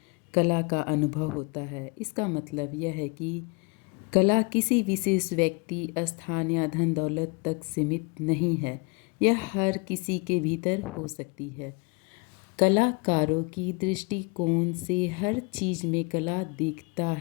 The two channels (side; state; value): right; quieter; 29.9 dB